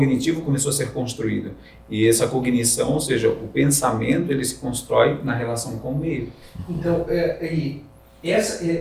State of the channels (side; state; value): both; identical; correlation 1.00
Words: começou a ser construído. E essa cognição, ou seja, o pensamento, ele se constrói na relação com o meio. Então,